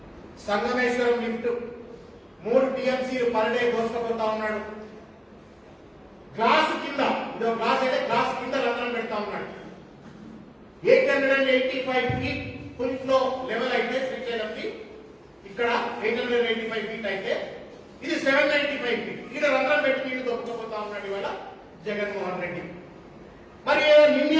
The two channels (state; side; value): identical; both; correlation 1.00